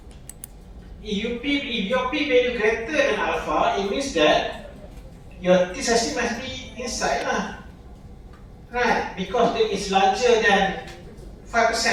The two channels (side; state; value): both; identical; correlation 1.00